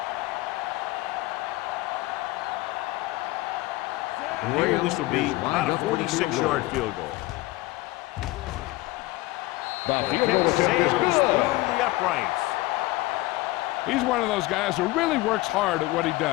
And here, this will be about a 46-yard field goal. The kick sails through the uprights. He's one of those guys who really works hard at what he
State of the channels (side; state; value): right; quieter; 19.6 dB